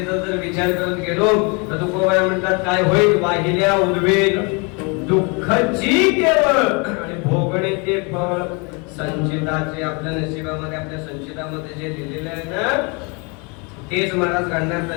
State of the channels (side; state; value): right; quieter; 31.5 dB